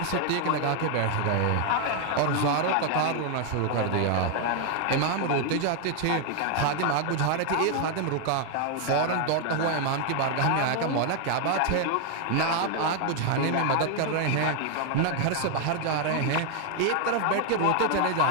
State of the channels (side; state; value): both; different; correlation 0.00